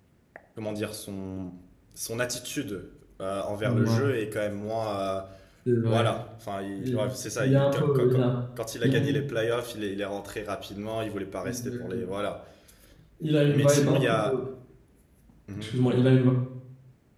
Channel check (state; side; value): identical; both; correlation 1.00